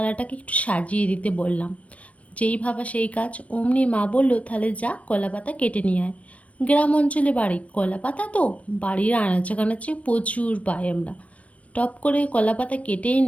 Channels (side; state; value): right; late; 0.065 ms